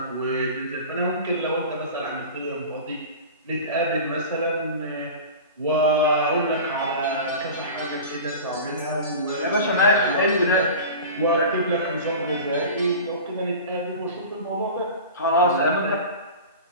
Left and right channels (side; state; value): both; inverted; correlation -0.34